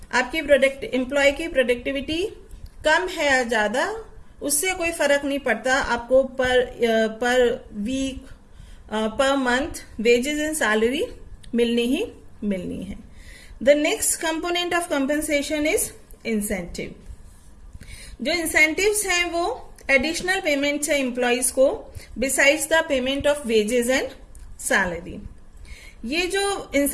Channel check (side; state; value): both; identical; correlation 1.00